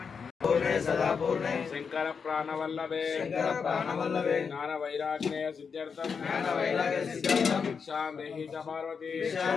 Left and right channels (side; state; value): right; quieter; 5.9 dB